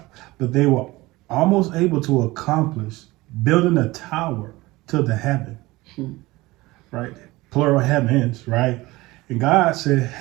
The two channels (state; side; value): quieter; left; 20.3 dB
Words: but they were almost able to accomplish building a tower to the heaven, right? Plural heavens, right? And God said,